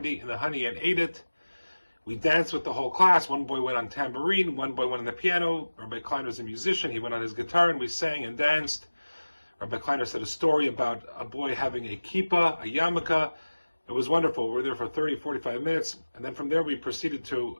in the honey and ate it. We danced with the whole class. One boy went on tambourine, one boy went on the piano. Rabbi Kleiner was a musician. He went on his guitar, and we sang and danced. Rabbi Kleiner said a story about a boy having a kippah, a yarmulke. It was wonderful. We were there for 30, 45 minutes, and then from there we proceeded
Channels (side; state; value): both; inverted; correlation -1.00